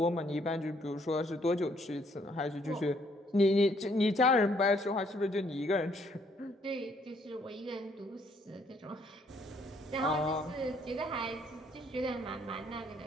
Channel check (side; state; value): both; normal; correlation 0.67